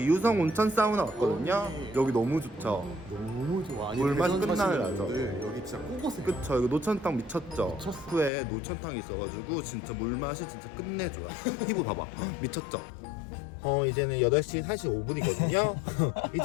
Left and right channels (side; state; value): right; drops out; at 8.3 s